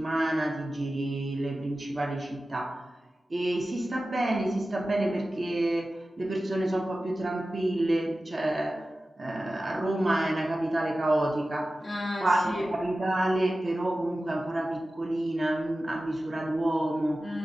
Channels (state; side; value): normal; both; correlation 0.95